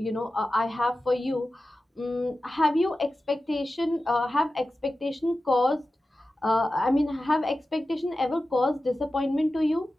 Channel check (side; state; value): both; normal; correlation 0.94